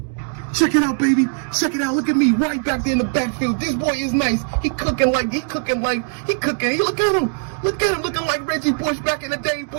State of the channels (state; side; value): silent; left; 64 dB below the other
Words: Check it out, baby. Check it out. Look at me right back there in the backfield. This boy is nice. He cooking. Look at him. Looking like Reggie Bush back in the day,